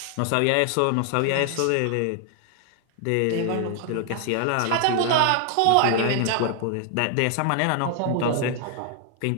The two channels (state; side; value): different; both; correlation 0.00